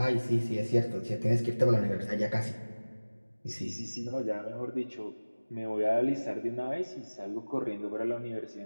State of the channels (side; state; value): both; inverted; correlation -1.00